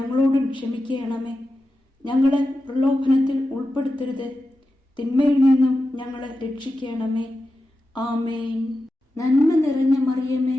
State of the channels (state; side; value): normal; both; correlation 0.91